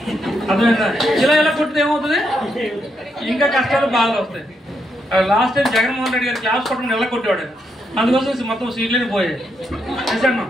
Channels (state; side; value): normal; both; correlation 0.79